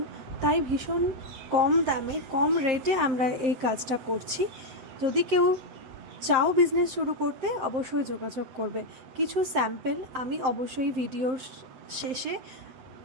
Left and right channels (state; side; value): late; left; 7.6 ms